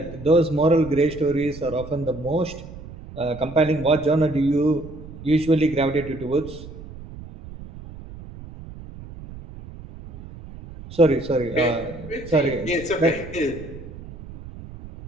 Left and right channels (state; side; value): noise; right; rumble, 15 dB below the sound